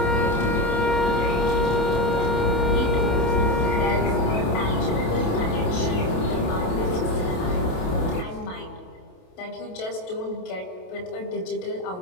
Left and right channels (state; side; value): late; right; 28 ms